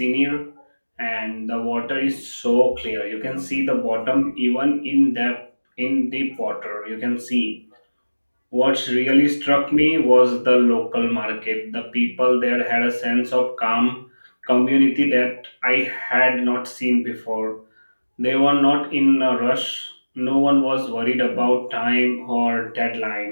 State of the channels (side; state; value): both; inverted; correlation -1.00